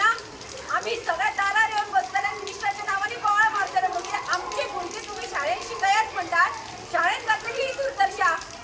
आमी सगळ्या दारार येवन बसतले मिनिस्टराच्या नांवांनी बोवाळ मारतले म्हणजे आमची भुरगीं तुमी शाळेन शिकयात म्हणटात शाळेन जातली ही दुर्दशा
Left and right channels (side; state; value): both; identical; correlation 1.00